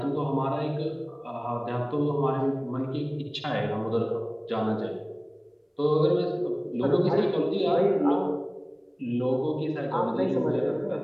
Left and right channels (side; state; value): both; identical; correlation 1.00